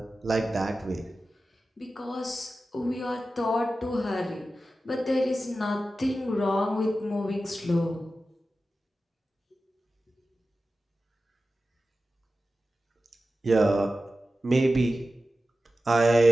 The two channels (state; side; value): normal; both; correlation 0.94